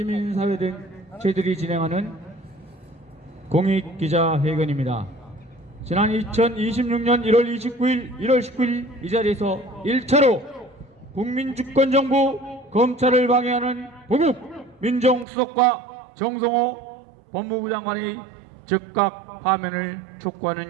등 저희들이 진행하는 공익기자회견입니다. 지난 2026년 1월 29일, 1월 19일 이 자리에서 1차로 국민주권정부 검찰을 방해하는 보국 민정수석과 정성호 법무부 장관의 즉각 파면을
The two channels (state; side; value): drops out; left; at 15.2 s